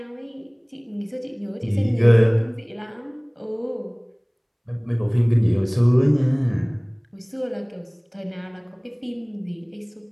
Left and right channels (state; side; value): identical; both; correlation 1.00